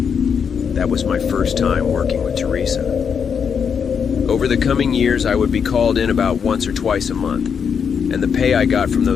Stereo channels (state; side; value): quieter; right; 6.8 dB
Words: That was my first time working with Teresa. Over the coming years, I would be called in about once or twice a month, and the pay I got from